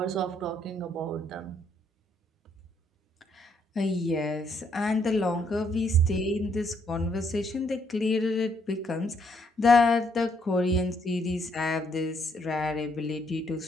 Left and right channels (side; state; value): both; normal; correlation 0.71